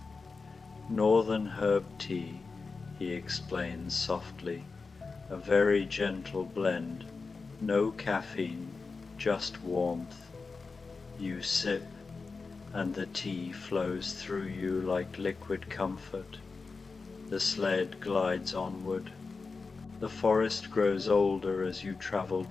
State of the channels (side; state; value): right; quieter; 4.4 dB